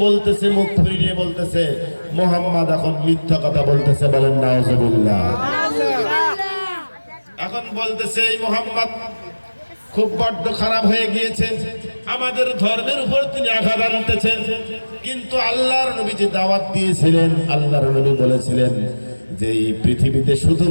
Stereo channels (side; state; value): both; inverted; correlation -1.00